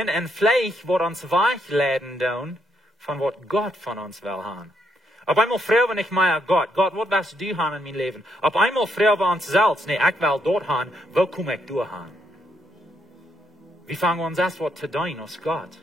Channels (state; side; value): normal; both; correlation 0.76